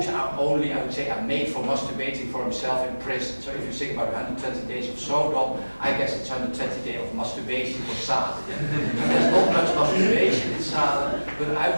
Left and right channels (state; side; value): inverted; both; correlation -1.00